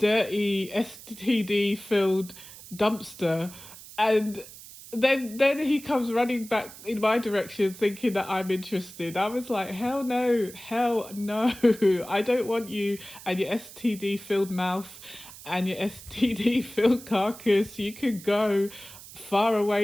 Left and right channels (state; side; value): noise; right; hiss, 17 dB below the sound